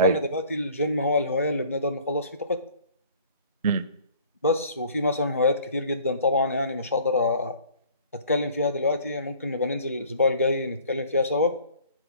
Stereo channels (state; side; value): inverted; both; correlation -0.52